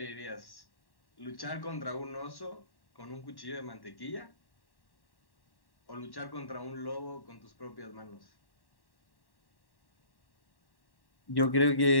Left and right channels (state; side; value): late; right; 1.1 ms